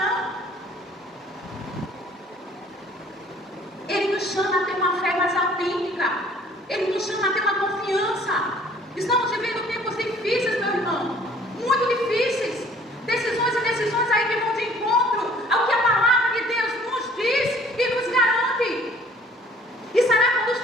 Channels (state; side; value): normal; both; correlation 0.55